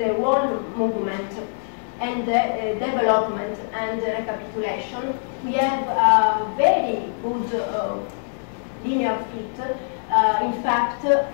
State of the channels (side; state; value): right; silent; digital silence